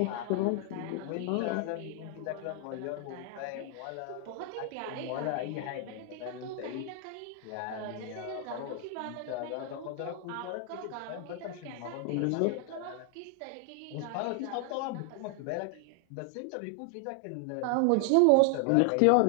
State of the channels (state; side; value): different; both; correlation 0.00